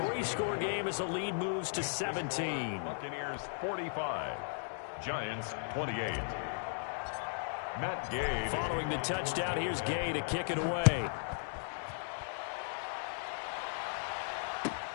game as the lead moves to 17. Buccaneers 45, Giants 28. Matt Gay. Following the touchdown, here's Gay to kick it away.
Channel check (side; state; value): right; silent; digital silence